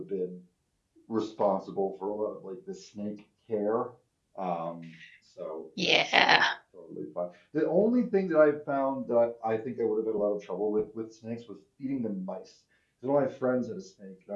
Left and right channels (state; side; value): identical; both; correlation 1.00